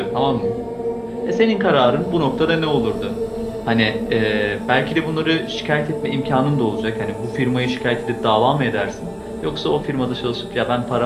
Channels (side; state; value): both; identical; correlation 1.00